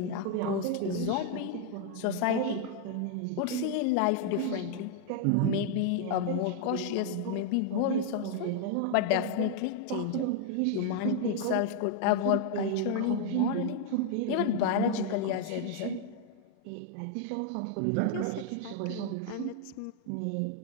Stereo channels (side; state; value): both; different; correlation 0.00